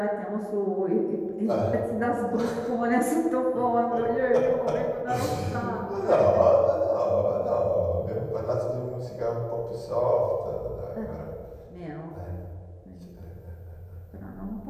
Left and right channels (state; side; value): identical; both; correlation 1.00